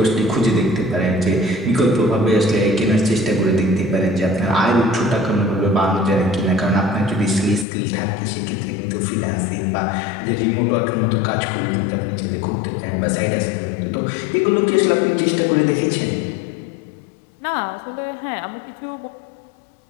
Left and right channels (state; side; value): drops out; right; at 7.7 s